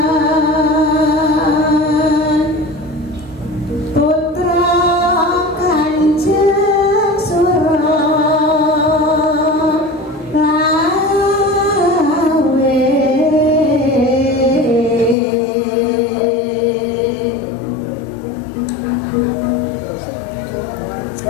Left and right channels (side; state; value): right; drops out; at 15.2 s